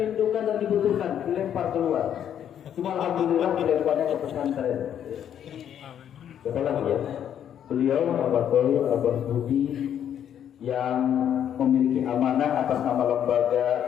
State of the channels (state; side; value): quieter; right; 9.6 dB